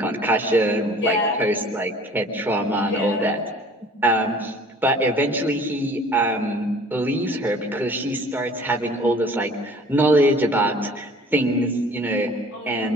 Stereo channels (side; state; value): both; normal; correlation 0.49